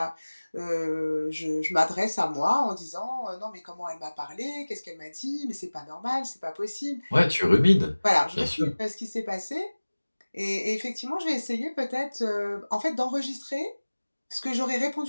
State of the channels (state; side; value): inverted; both; correlation -1.00